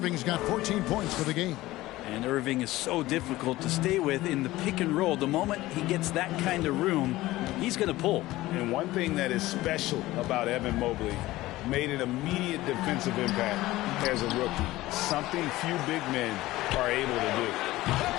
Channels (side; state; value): right; quieter; 17.5 dB